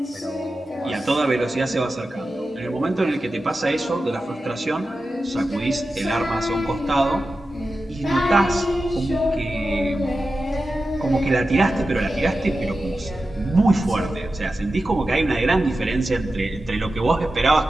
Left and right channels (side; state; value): both; normal; correlation 0.93